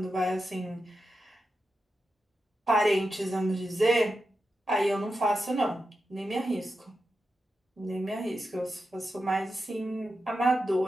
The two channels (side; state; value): both; normal; correlation 0.89